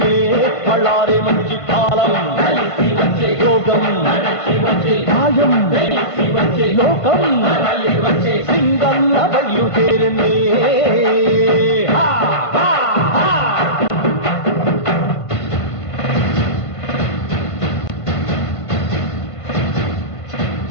బళ్ళారే మంచి కాలం యోగం న్యాయం లోకం సింగన్న బయలుదేరనే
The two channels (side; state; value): right; late; 1.5 ms